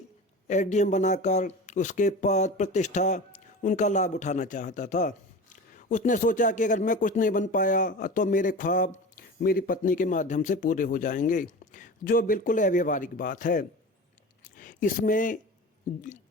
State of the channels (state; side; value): normal; both; correlation 0.32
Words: एसडीएम बनाकर उसके पद प्रतिष्ठा उनका लाभ उठाना चाहता था। उसने सोचा कि अगर मैं कुछ नहीं बन पाया तो मेरे ख्वाब मेरी पत्नी के माध्यम से पूरे हो जाएंगे, जो बिल्कुल अव्यावहारिक बात है। इसमें